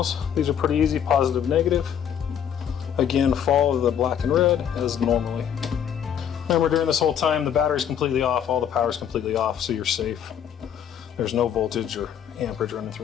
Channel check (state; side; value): quieter; right; 8.9 dB